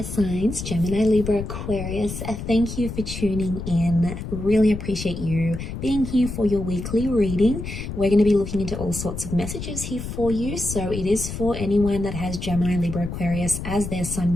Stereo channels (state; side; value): noise; left; rumble, 7 dB below the sound